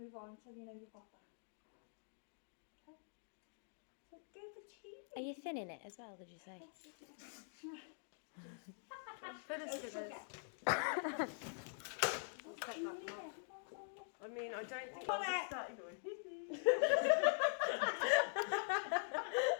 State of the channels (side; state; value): right; silent; digital silence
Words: on until you know you've got that. Okay? So go for tea. Are you thinning it as well, did you say? Okay. I mean, I don't think Come I'll on. just start going.